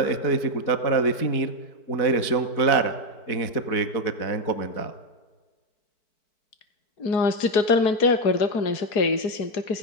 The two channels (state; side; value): late; right; 4.6 ms